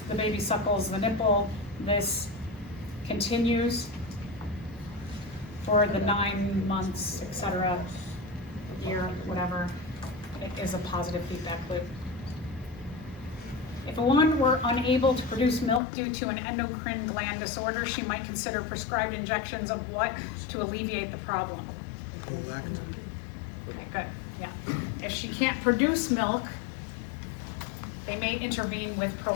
the baby suckles the nipple, this continues for the 9 months, etc., year, whatever. It is a positive feedback loop. If a woman were unable to produce milk due to an endocrine gland disorder, she might consider prescribed injections of what to alleviate the problem? Prolactin. Okay, good, yeah. If she can't produce milk, they may intervene with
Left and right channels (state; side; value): drops out; right; at 15.8 s